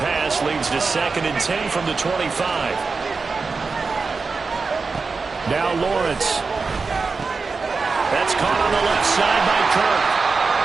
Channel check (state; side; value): quieter; left; 4.5 dB